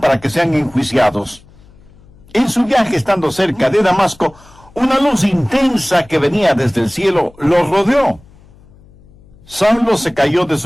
para que sean enjuiciados. En su viaje, estando cerca de Damasco, una luz intensa que venía desde el cielo los rodeó. Saulo se cayó de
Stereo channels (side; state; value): left; noise; hum, 26 dB below the sound